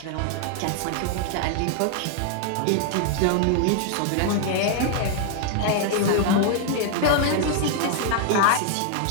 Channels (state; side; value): different; both; correlation 0.00